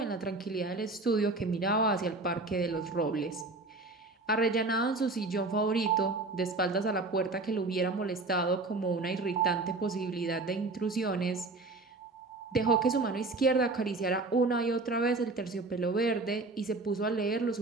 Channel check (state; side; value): quieter; left; 3.3 dB